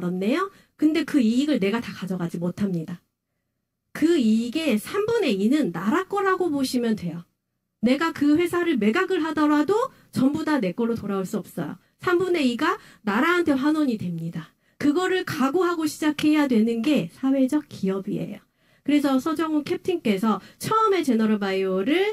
근데 그 이익을 내가 다 가져가지 못합니다. 그 이익의 3분의 2는 나라 거라고 보시면 돼요. 내가 그 회사를 매각을 하더라도 전부 다 내 걸로 돌아올 수 없어요. 3분의 2가 나라한테 환원이 됩니다. 그거를 각오하고 시작해야 되는 게 사회적 기업이에요. 그래서 서정훈 캡틴께서 처음에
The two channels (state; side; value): identical; both; correlation 1.00